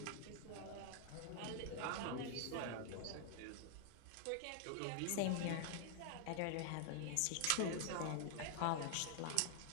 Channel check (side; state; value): both; different; correlation 0.00